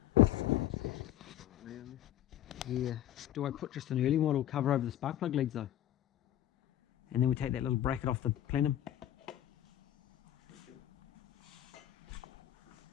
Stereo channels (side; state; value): right; quieter; 12.3 dB